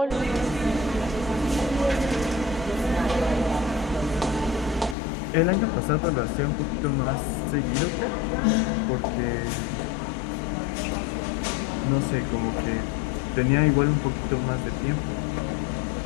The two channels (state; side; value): drops out; right; at 5.0 s